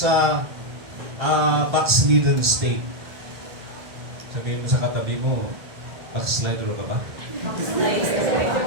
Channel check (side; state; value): left; late; 1.6 ms